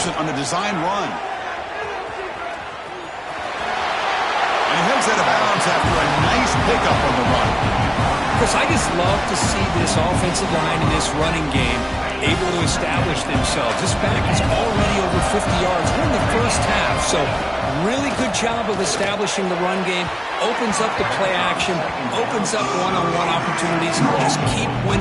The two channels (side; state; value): both; identical; correlation 1.00